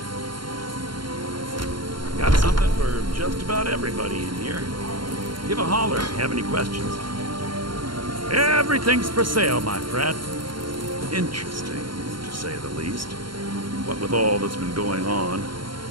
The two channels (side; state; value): left; late; 0.73 ms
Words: Got something for just about everybody in here. Give a holler if you have any questions. Everything's for sale, my friend. Interesting, to say the least. What with all that's been going on.